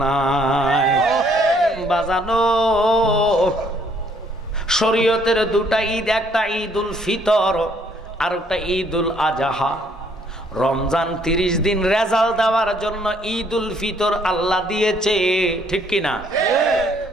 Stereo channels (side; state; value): both; normal; correlation 0.65